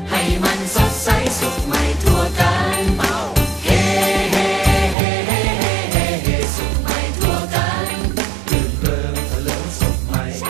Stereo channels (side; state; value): left; drops out; at 5.0 s